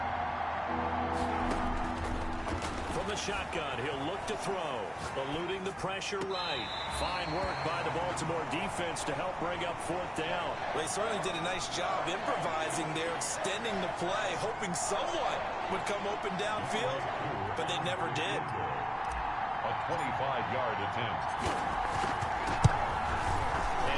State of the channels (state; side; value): identical; both; correlation 1.00